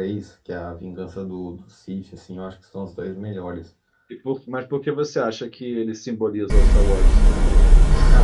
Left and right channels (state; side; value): identical; both; correlation 1.00